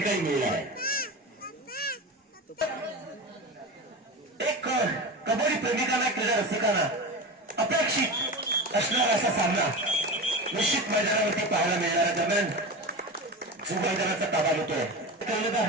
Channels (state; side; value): normal; both; correlation 0.26